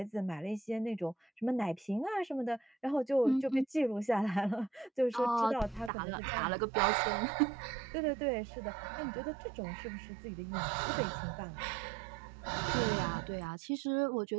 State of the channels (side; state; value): left; drops out; at 5.9 s